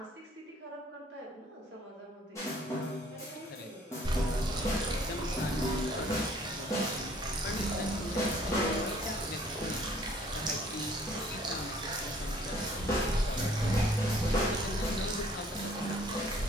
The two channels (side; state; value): both; normal; correlation 0.58